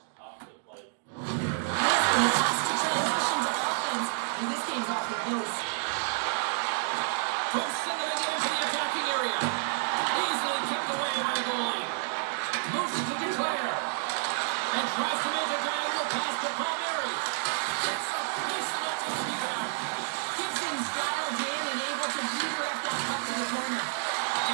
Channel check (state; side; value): silent; left; 58 dB below the other